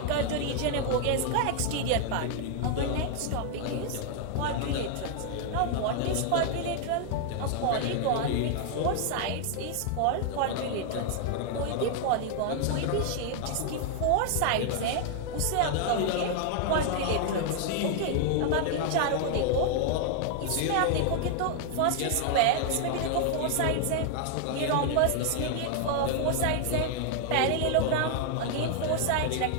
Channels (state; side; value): different; both; correlation 0.00